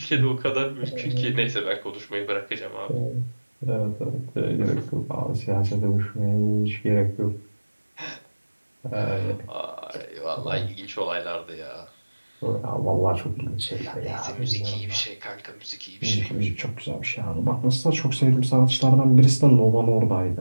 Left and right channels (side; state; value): both; inverted; correlation -1.00